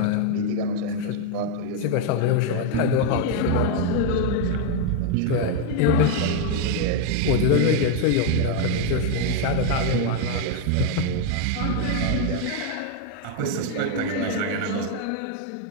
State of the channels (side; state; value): both; different; correlation 0.01